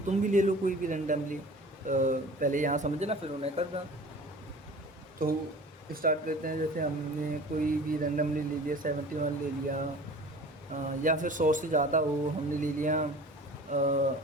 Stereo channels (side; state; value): both; normal; correlation 0.42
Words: भी ले लो, कोई भी रैंडमली, पहले यहाँ समझना फिर उन्हें करना। तो स्टार्ट करते हैं, जैसे हमने कोई भी रैंडमली ले लिया, 71 ले लिया, या फिर 100 से ज़्यादा हो हमने ले लिया,